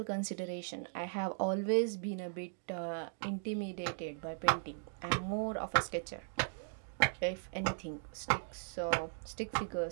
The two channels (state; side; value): silent; left; digital silence